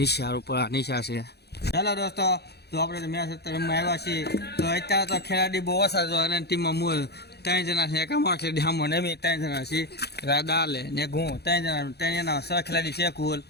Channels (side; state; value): right; late; 0.48 ms